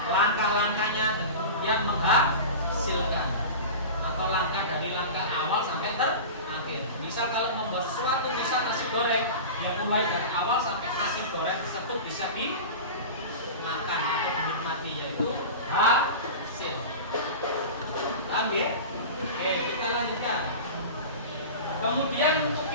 langkah-langkahnya, dan kemudian menghasilkan atau langkah dari langkah awal sampai terakhir. Misal kalau membuat sesuatu, misal nasi goreng, yang mulai dari awal sampai nasi goreng tersebut bisa dimakan atau dinikmati, yaitu hasil. Paham ya? Oke, kita lanjutkan. Kemudian untuk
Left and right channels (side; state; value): both; inverted; correlation -0.30